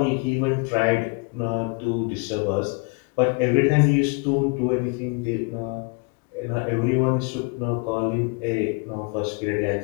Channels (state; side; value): quieter; right; 32.3 dB